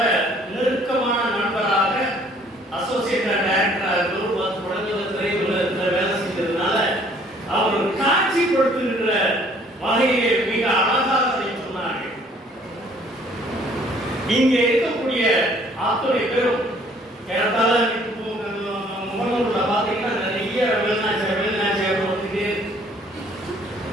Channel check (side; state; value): both; normal; correlation 0.59